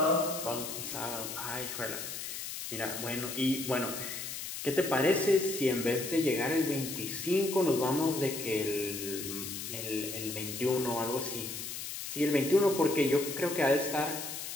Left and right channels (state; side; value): noise; left; hiss, 7 dB below the sound